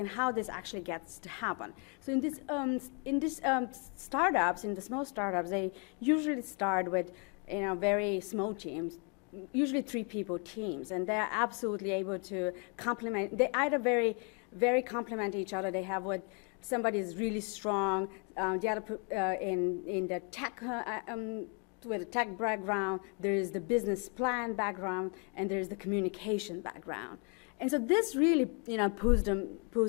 how this actually gets to happen. So in this startups, in the small startups, they usually start with very small teams, usually 3 people teams, and they're absolutely able to complement. They either very complement each other. They have what somebody is really strong, the other in the tech, with a tech background, there is the business plan background, and there is the communication background. And so this really, pulls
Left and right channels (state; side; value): quieter; right; 36.6 dB